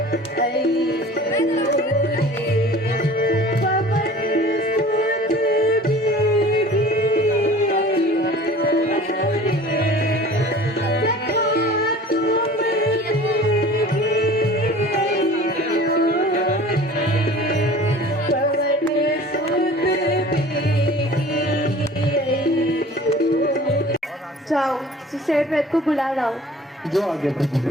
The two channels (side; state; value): both; normal; correlation 0.44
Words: जाओ सुसेट वेद को बुला लाओ। जो आगे प्रभु।